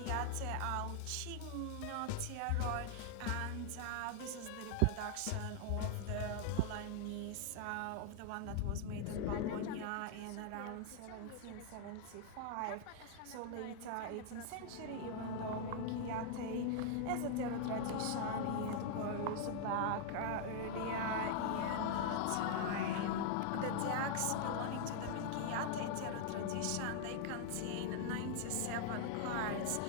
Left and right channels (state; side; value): different; both; correlation 0.00